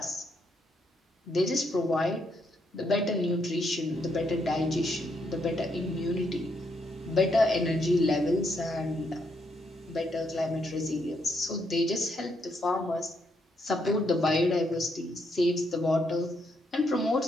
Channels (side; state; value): both; normal; correlation 0.76